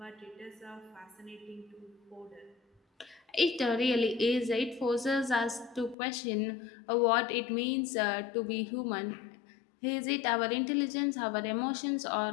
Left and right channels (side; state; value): right; drops out; at 6.0 s